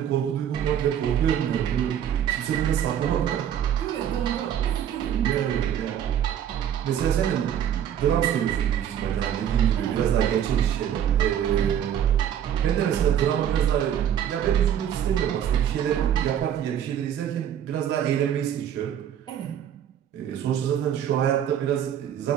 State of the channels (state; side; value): quieter; left; 9.8 dB